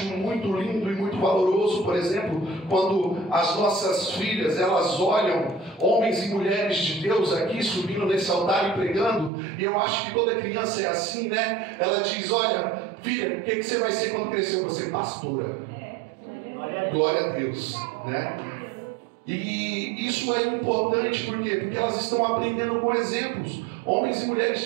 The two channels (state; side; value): drops out; left; at 9.3 s